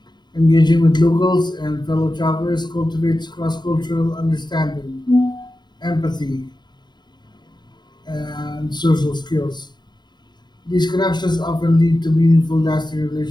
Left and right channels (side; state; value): right; late; 0.21 ms